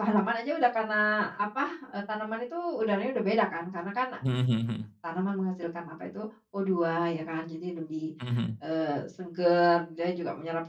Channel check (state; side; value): identical; both; correlation 1.00